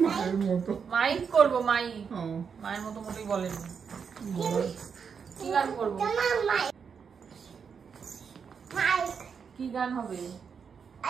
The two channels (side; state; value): left; quieter; 6.4 dB